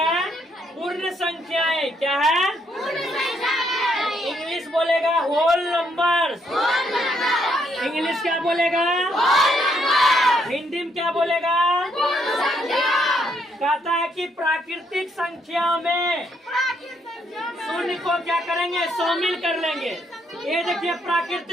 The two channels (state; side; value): normal; both; correlation 0.73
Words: पूर्ण संख्याएं। क्या है? इंग्लिश बोलेगा होल नंबर्स। इंग्लिश क्या बोलेगा? हिंदी में क्या बोलेगा? कहता है कि प्राकृतिक संख्या में शून्य को क्या करेंगे? शामिल कर लेंगे। ये देखिए